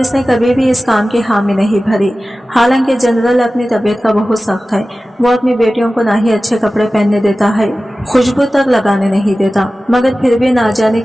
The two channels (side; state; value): both; normal; correlation 0.96